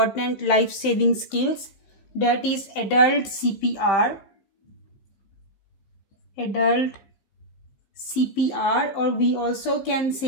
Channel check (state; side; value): late; right; 15 ms